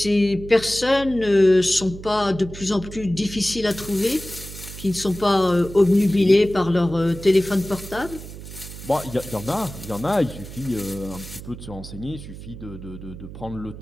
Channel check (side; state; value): right; noise; hum, 13 dB below the sound